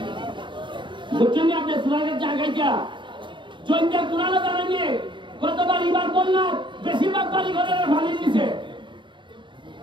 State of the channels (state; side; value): late; left; 0.23 ms